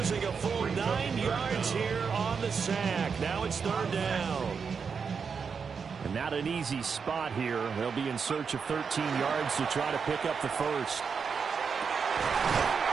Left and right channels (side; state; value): left; quieter; 5.9 dB